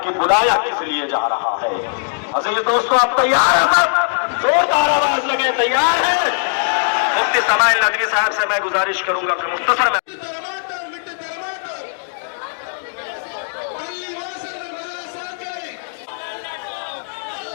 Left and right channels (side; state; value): right; silent; digital silence